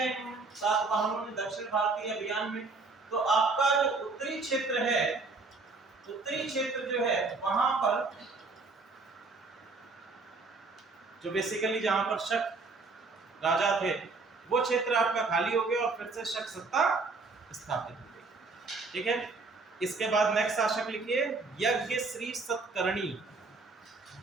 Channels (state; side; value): quieter; left; 3.9 dB